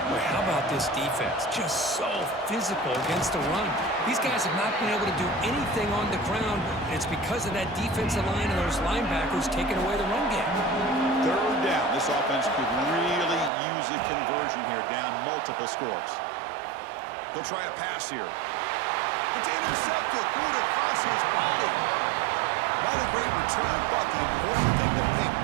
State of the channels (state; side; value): drops out; left; at 13.5 s